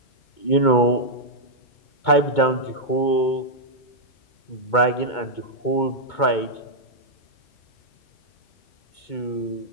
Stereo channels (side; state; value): right; late; 2.2 ms